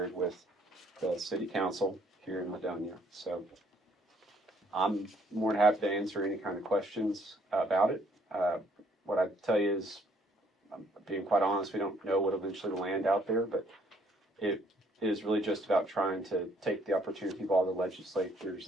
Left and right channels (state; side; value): normal; both; correlation 0.65